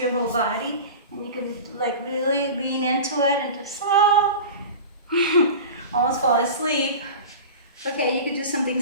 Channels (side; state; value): both; inverted; correlation -0.32